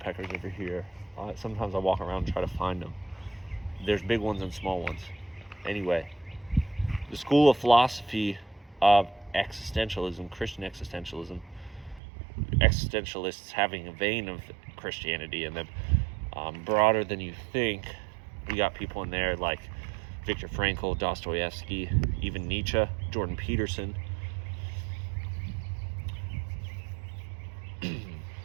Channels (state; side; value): drops out; left; at 12.0 s